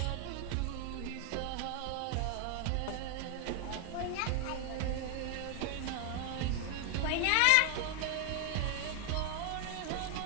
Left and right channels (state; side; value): different; both; correlation 0.00